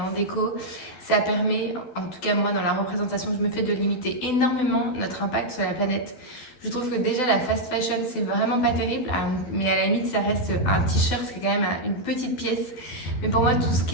déco, ça permet, en tout cas moi dans la représentation que je me fais, de limiter énormément notre impact sur la planète. Je trouve que déjà la fast fashion c'est vraiment pas terrible, mais à la limite ça reste un t-shirt, c'est quand même une petite pièce. Mais pour moi tout ce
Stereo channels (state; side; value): late; right; 12 ms